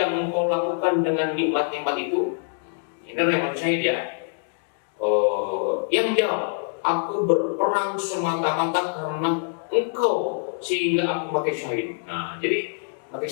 engkau lakukan dengan nikmat-nikmat itu? Ini orang yang mati syahid ya. Yang menjawab, aku berperang semata-mata karena engkau sehingga aku mati syahid. Nah, jadi mati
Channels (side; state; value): right; silent; digital silence